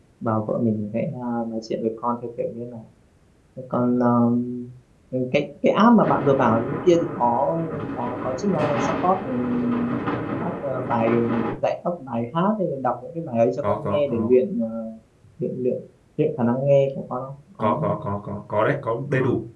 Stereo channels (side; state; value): both; identical; correlation 1.00